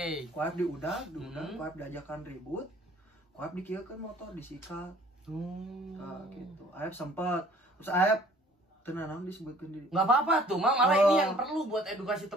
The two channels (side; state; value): both; normal; correlation 0.54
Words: Ku Aep diudag ku Aep diajakan ribut, ku Aep dikieukeun motor disikat. Gitu. Aep sempat terus Aep tenang disebutkan diri. Nggak apa-apa tuh, malah ini yang perlu buat edukasi